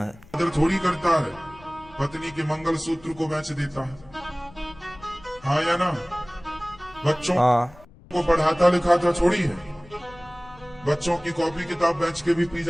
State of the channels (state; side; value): noise; left; rumble, 23 dB below the sound